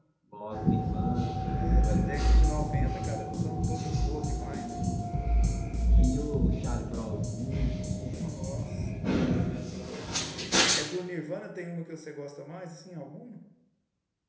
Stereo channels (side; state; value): both; identical; correlation 1.00